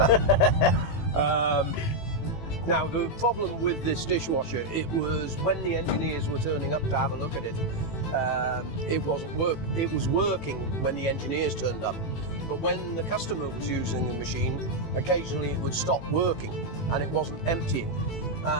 Now the problem with this dishwasher, it was when the engineers were turning up to have a look at it, it was working when the engineers turned up. But when the customer was using the machine, occasionally it would stop working and it wasn't emptying.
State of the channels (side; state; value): right; late; 18 ms